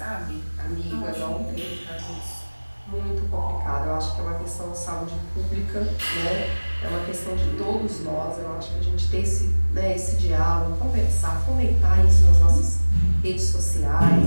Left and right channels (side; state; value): both; inverted; correlation -1.00